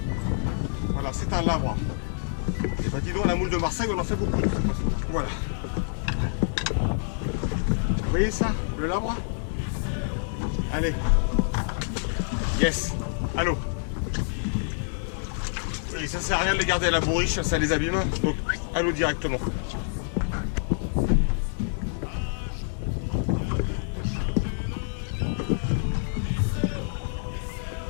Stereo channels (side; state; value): right; silent; digital silence